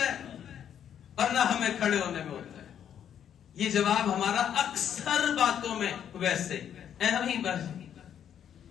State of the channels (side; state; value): right; quieter; 9.2 dB